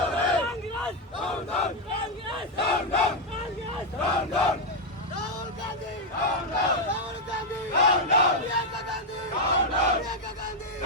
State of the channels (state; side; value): normal; both; correlation 0.02